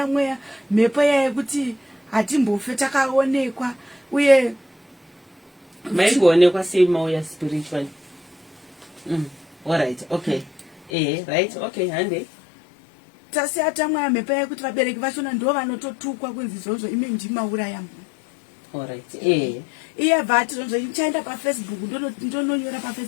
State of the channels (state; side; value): drops out; right; at 10.9 s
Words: mweya mhepo yayekuti hatimbofe takaonekwa uye maigoonekwa sei mauya spiritually. Alright. Okay. Right. Okay. Hande tasiya tamweya mhepo yayekuti vabereki vachona ndo vanototukwa kunzi izvozvo imi ndimauraya munhu. Alright. Iye bvati zvonzo ichaenda paFacebook ndononyora